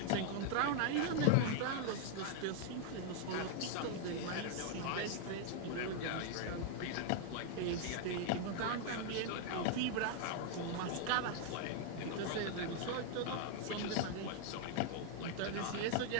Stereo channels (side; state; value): both; different; correlation 0.00